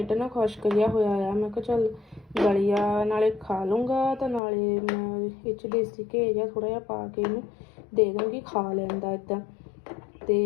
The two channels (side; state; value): right; drops out; at 4.4 s